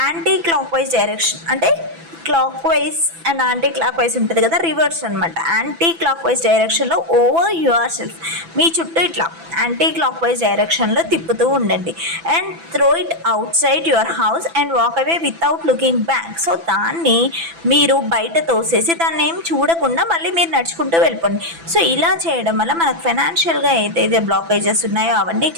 యాంటీ క్లాక్ వైజ్ డైరెక్షన్ అంటే clock wise and anti clock wise ఉంటుంది కదా, రివర్స్ అనమాట. యాంటీ క్లాక్ వైజ్ డైరెక్షన్లో ఓవర్ యువర్ సెల్ఫ్ మీ చుట్టూ ఇట్లా యాంటీ క్లాక్ వైజ్ డైరెక్షన్లో తిప్పుతూ ఉండండి. And throw it out side your house and walk away without looking back. So దాన్ని మీరు బయట తోసేసి దాన్ని ఏం చూడకుండా మళ్ళీ మీరు నడుచుకుంటూ వెళ్ళిపోండి. సో ఇలా చేయడం వల్ల మనకు ఫైనాన్షియల్గా ఏదైతే బ్లాకేజెస్ ఉన్నాయో అవన్నీ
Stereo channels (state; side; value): late; left; 6.0 ms